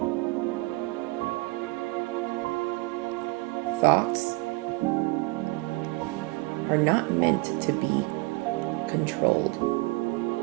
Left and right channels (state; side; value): quieter; left; 24.1 dB